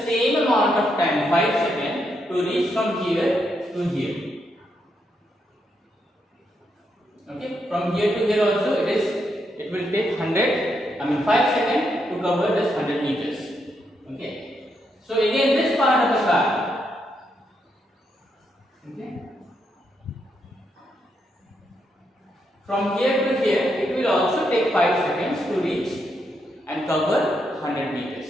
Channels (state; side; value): normal; both; correlation 0.80